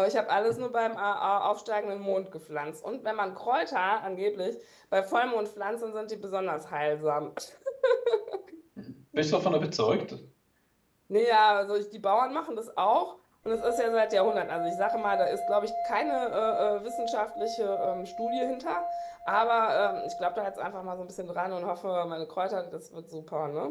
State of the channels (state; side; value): identical; both; correlation 1.00